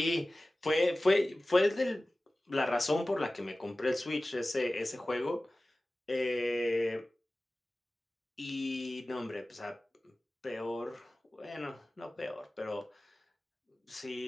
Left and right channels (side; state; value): both; normal; correlation 0.97